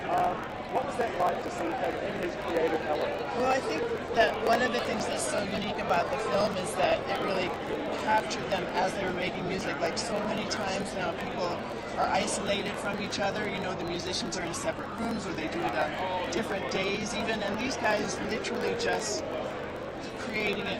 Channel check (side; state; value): both; identical; correlation 1.00